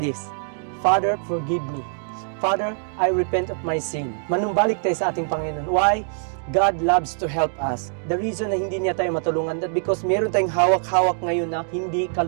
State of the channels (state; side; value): silent; left; digital silence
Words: this. Father, forgive me. Father, I repent of my sin. Manumbalik tayo sa ating Panginoon. Why? God loves to help us. The reason na hindi niya tayo matulungan, that because meron tayong hawak-hawak ngayon na hindi